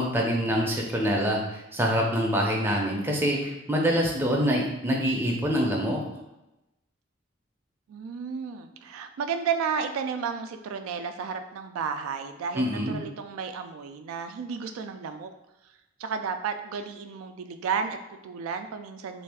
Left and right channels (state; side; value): normal; both; correlation 0.39